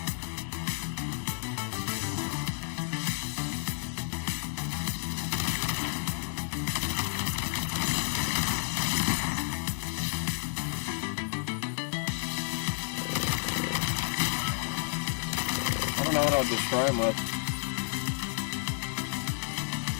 I don't know what I'll destroy him with.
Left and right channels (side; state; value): right; silent; digital silence